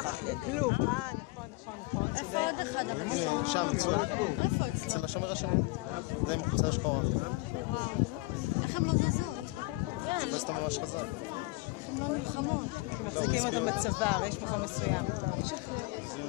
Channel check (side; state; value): right; quieter; 23.9 dB